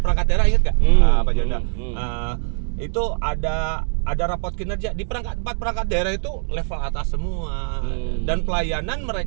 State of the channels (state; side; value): silent; left; digital silence